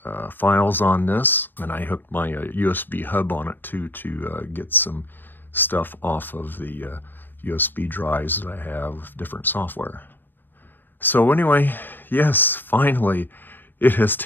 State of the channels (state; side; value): late; right; 0.094 ms